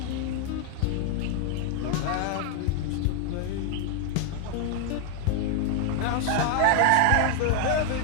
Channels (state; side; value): different; both; correlation 0.00